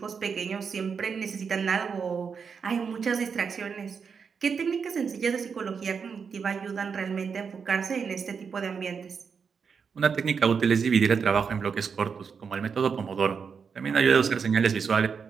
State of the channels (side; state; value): left; quieter; 6.0 dB